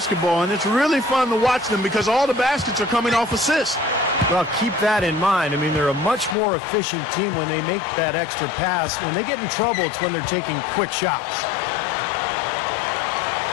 and it's really fun to watch them because all the baskets are coming off assists. Well, keep that in mind. I mean, they're a much more efficient team when they make that extra pass. When they get in trouble, it's when they're taking quick shots.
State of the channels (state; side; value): drops out; right; at 6.4 s